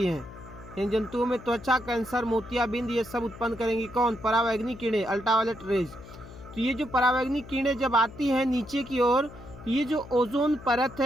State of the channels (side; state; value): left; noise; hum, 17 dB below the sound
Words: हैं। इन जंतुओं में त्वचा कैंसर, मोतियाबिंद ये सब उत्पन्न करेंगी कौन? परावैंगनी किरणें, अल्ट्रावायलेट रेज। तो ये जो परावैंगनी किरणें जब आती हैं नीचे की ओर, ये जो ओजोन परत